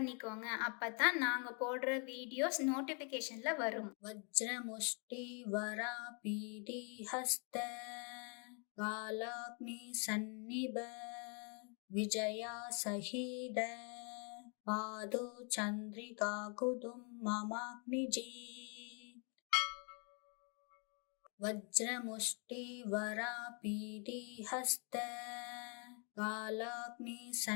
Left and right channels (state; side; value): quieter; right; 38.4 dB